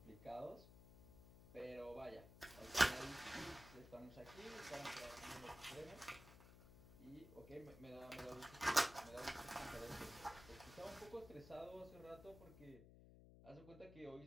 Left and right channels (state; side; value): noise; left; hum, 17 dB below the sound